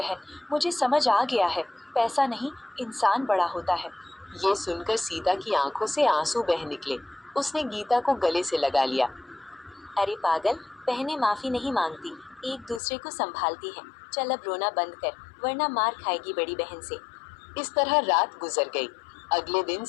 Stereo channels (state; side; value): drops out; right; at 12.8 s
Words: मुझे समझ आ गया है, पैसा नहीं इंसान बड़ा होता है। ये सुनकर सीता की आंखों से आंसू बह निकले। उसने गीता को गले से लगा लिया। अरे पागल, बहनें माफी नहीं मांगती, एक दूसरे को संभालती हैं। चल अब रोना बंद कर, वरना मार खाएगी बड़ी बहन से। इस तरह रात गुजर गई। अगले दिन